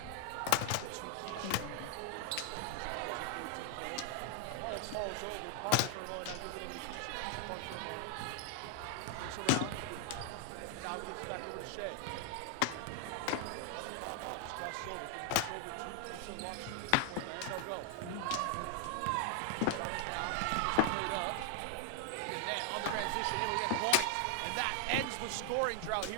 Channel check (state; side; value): different; both; correlation 0.00